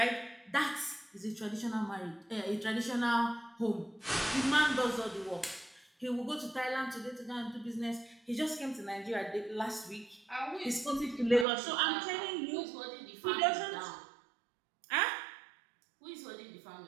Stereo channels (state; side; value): drops out; left; at 11.5 s